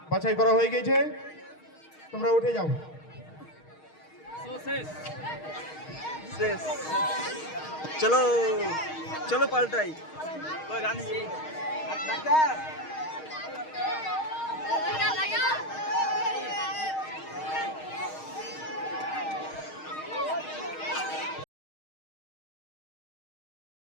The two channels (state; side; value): late; right; 6.4 ms